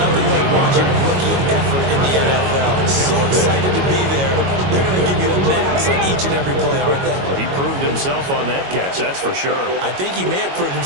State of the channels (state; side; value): late; left; 22 ms